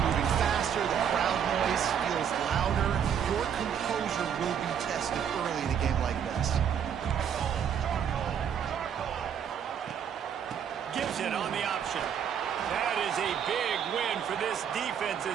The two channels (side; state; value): left; quieter; 8.3 dB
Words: moving faster. The crowd noise feels louder. Your composure will be tested early in a game like this. Gives it on the option. That is a big win for this defense